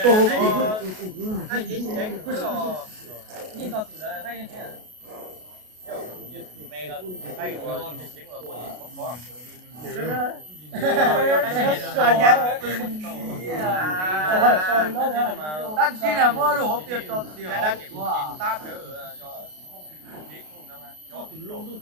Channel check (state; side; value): late; left; 33 ms